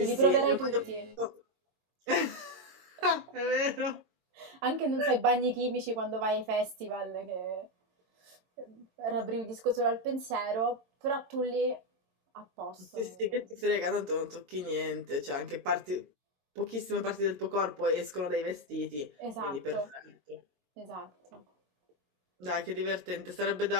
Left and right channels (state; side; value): late; left; 22 ms